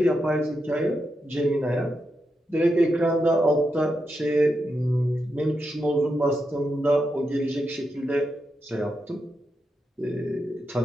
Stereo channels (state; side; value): normal; both; correlation 0.85